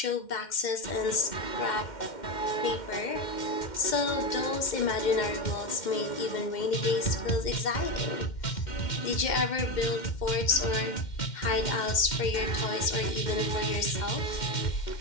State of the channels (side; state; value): right; late; 2.1 ms